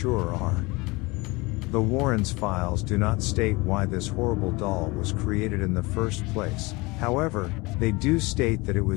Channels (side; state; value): right; quieter; 24.3 dB